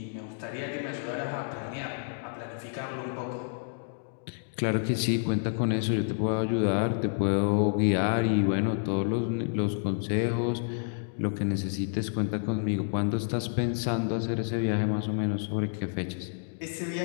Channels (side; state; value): right; silent; digital silence